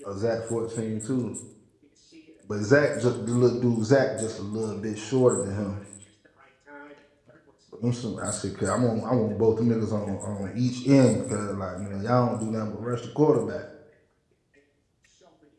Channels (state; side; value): identical; both; correlation 1.00